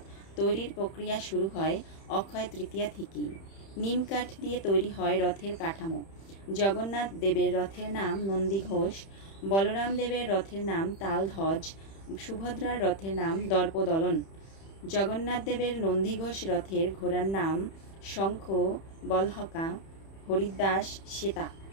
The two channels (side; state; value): right; late; 31 ms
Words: তৈরির প্রক্রিয়া শুরু হয় অক্ষয় তৃতীয়া থেকেই। নিম কাঠ দিয়ে তৈরি হয় রথের কাঠামো। জগন্নাথ দেবের রথের নাম নন্দীঘোষ, বলরাম দেবের রথের নাম তালধ্বজ, সুভদ্রার রথের নাম দর্পদলন। জগন্নাথ দেবের নন্দীঘোষ রথের ঘোড়ার নাম শঙ্খ, বলহকা, হরিদাস, শ্বেতা।